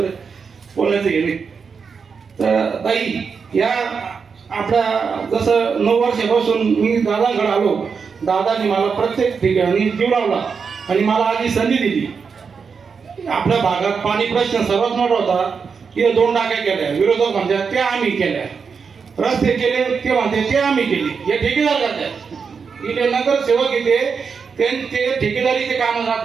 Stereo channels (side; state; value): left; quieter; 5.7 dB